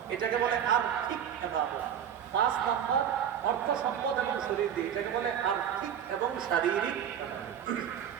এটাকে বলে আর্থিক ইবাদত। 5 নম্বর অর্থ সম্পদ এবং শরীর দিয়ে, এটাকে বলে আর্থিক এবং শারীরিক।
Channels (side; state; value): left; quieter; 9.1 dB